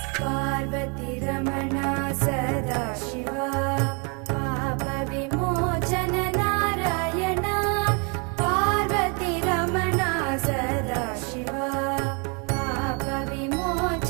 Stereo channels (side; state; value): left; quieter; 34.4 dB